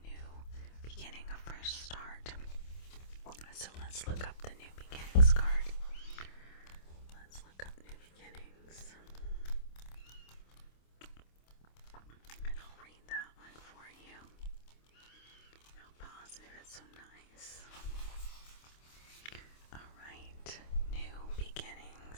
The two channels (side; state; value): right; late; 26 ms